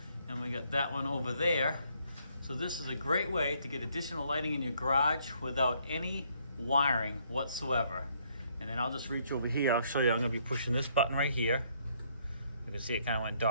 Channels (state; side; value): inverted; both; correlation -0.69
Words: and we got that one over there. So this is a great way to get additional lighting in your garage without any wiring whatsoever. And then I'll just reach over here. I'll show you. I'm going to be pushing this button right here. You can see it kind of went